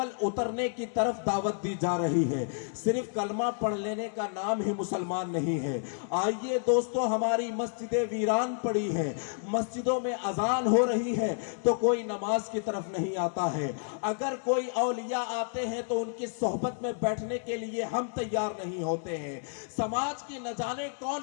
اترنے کی طرف دعوت دی جا رہی ہے۔ صرف کلمہ پڑھ لینے کا نام ہی مسلمان نہیں ہے۔ آئیے دوستو، ہماری مسجدیں ویران پڑی ہیں، مسجدوں میں اذان ہو رہی ہے تو کوئی نماز کی طرف نہیں آتا ہے۔ اگر کوئی اولیاء آتے ہیں تو ان کی صحبت میں بیٹھنے کے لیے ہم تیار نہیں ہوتے ہیں۔ سماج کی نہ جانے کون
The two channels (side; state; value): right; silent; 58 dB below the other